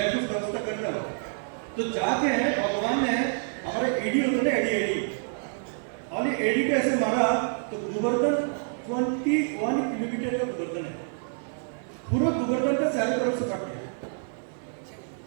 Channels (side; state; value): left; silent; 60 dB below the other